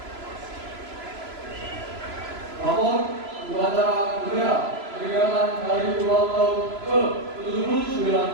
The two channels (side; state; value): left; late; 3.0 ms